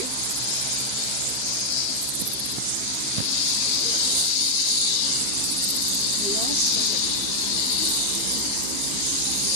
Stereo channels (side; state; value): right; late; 15 ms